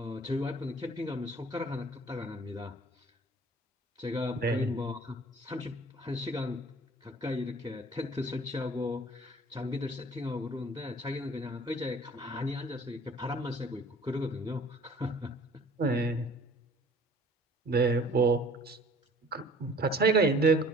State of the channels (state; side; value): normal; both; correlation 0.51